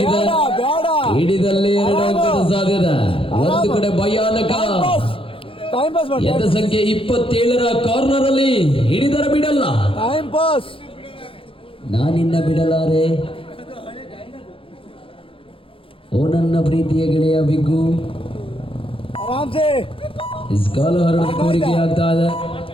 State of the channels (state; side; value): late; right; 0.26 ms